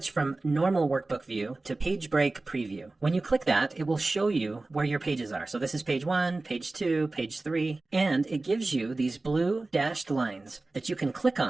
from normal workbook view to page break preview. When you click that, it will show you where your pages are. So this is page 1, page 2, page 3, and it gives you these blue dashed lines that you can click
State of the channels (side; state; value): left; quieter; 3.2 dB